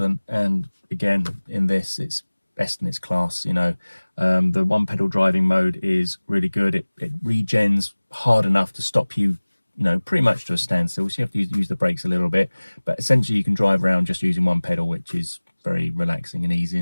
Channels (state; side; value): inverted; both; correlation -1.00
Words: And again, in this, it's best in its class. You know, the one pedal driving mode is really good. It regens hard enough to stop you, you know, pretty much to a standstill. So you have to use the brakes a little bit, but essentially you can drive around just using one pedal, which is very relaxing and easy